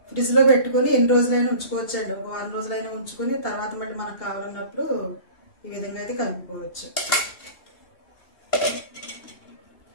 ఫ్రిడ్జ్లో పెట్టుకొని ఎన్ని రోజులైనా ఉంచుకోవచ్చండి. ఒక 1 రోజులైనా ఉంచుకొని తర్వాత మళ్ళీ మనకు కావాలన్నప్పుడు ఈ విధంగా అయితే కలుపుకోవచ్చు.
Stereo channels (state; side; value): late; right; 2.8 ms